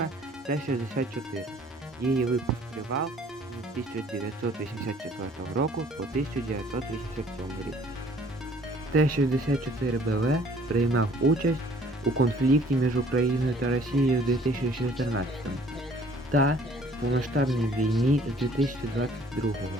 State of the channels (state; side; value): normal; both; correlation 0.56